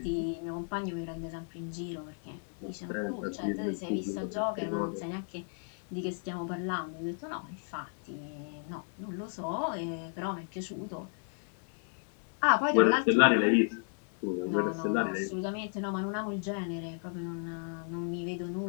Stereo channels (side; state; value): right; silent; 55 dB below the other